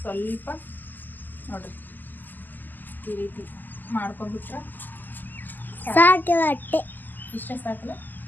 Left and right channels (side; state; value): right; late; 0.087 ms